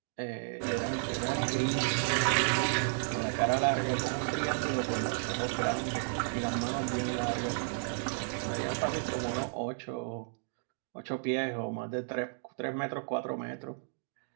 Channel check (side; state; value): left; silent; digital silence